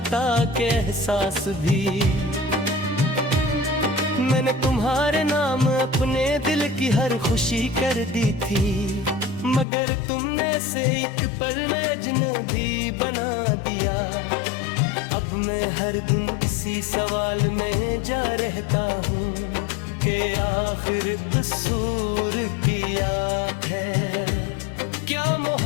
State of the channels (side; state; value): right; drops out; at 9.7 s